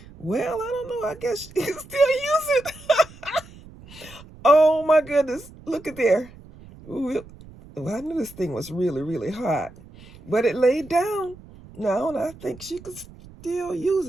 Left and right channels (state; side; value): noise; right; rumble, 20 dB below the sound